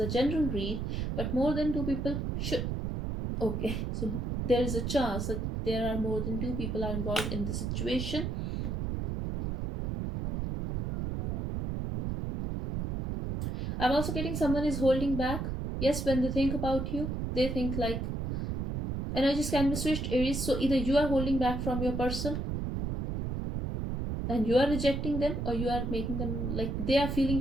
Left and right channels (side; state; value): right; noise; rumble, 2 dB below the sound